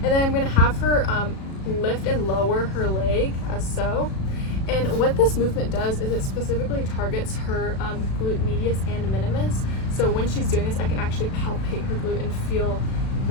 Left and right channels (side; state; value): right; late; 37 ms